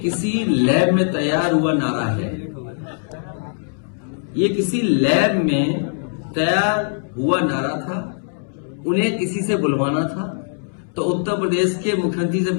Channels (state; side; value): silent; right; 65 dB below the other